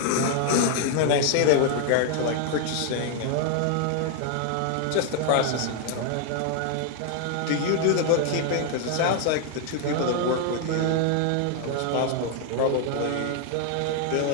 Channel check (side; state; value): both; different; correlation 0.00